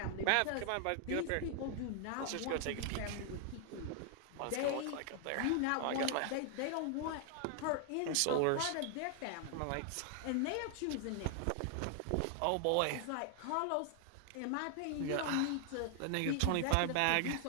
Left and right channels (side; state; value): both; different; correlation 0.00